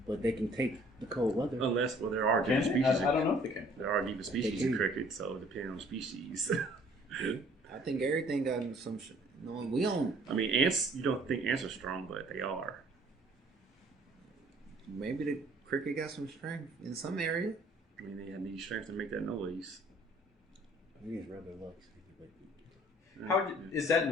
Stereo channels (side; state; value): both; normal; correlation 0.57